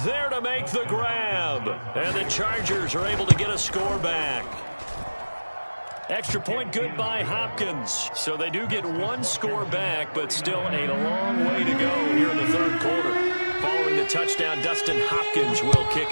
there to make the grab. And the Chargers are able to get a score back. Extra point good by Hopkins. So they do get 1 score back, but still a long way to go here in the 3rd quarter. Following the touchdown, Dustin Hopkins will kick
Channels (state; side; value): inverted; both; correlation -1.00